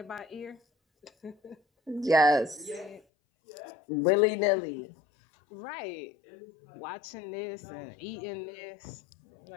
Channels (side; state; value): right; drops out; at 3.0 s